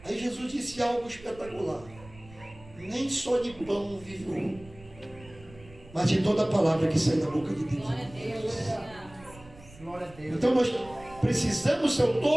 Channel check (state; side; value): noise; right; rumble, 21 dB below the sound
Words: Aí Jesus disse algo espetacular: nem só de pão vive o homem, mas de toda a palavra que sai da boca de Deus. Glória a Deus. Então nós precisamos, se eu